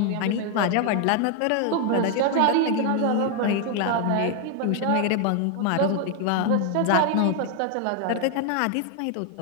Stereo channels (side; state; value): both; different; correlation 0.00